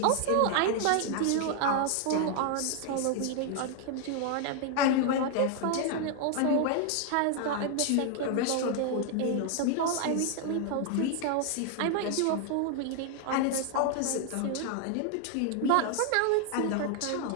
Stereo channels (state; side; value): different; both; correlation 0.00